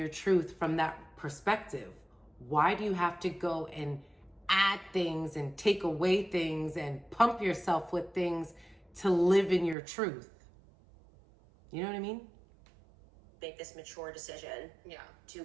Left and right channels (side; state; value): left; drops out; at 9.8 s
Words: truth from that perspective? Why do you have to go and add things and take away things and pump yourself with things to live in your truth? You know what I mean? Make this mature decision to